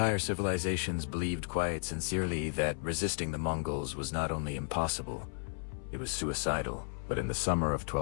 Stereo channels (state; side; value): silent; right; 55 dB below the other